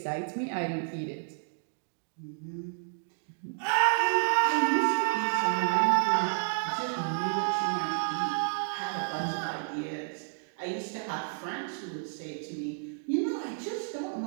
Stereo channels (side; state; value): left; silent; digital silence